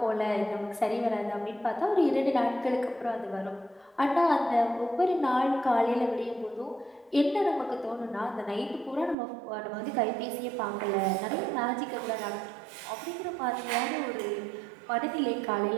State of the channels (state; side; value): drops out; left; at 9.2 s